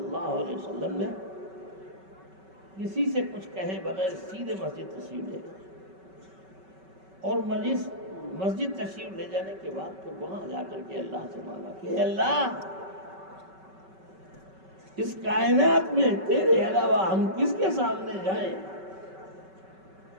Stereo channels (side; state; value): left; late; 5.3 ms